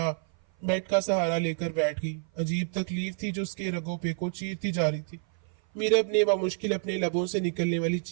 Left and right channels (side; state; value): left; silent; 56 dB below the other